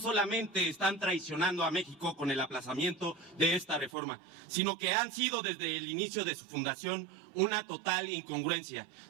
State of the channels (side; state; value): left; drops out; at 3.9 s